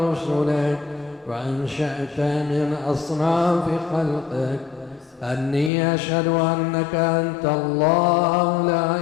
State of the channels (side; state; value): right; drops out; at 5.7 s